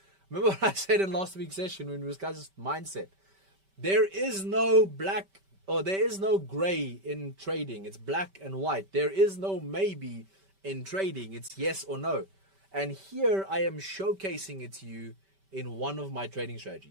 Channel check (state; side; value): late; left; 5.2 ms